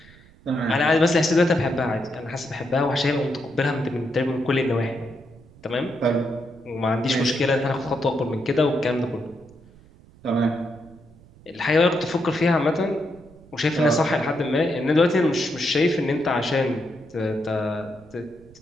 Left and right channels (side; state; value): right; noise; rumble, 24 dB below the sound